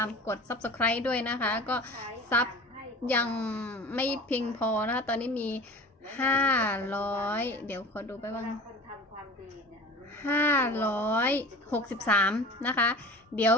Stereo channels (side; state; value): both; normal; correlation 0.39